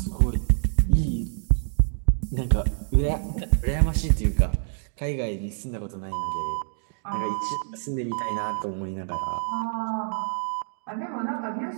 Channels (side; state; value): left; silent; digital silence